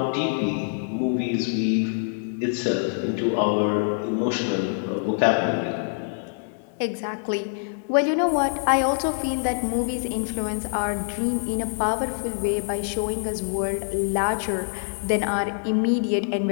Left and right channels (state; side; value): silent; right; digital silence